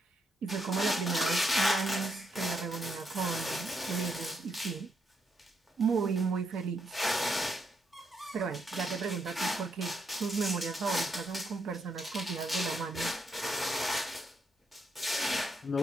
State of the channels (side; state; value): both; normal; correlation 0.78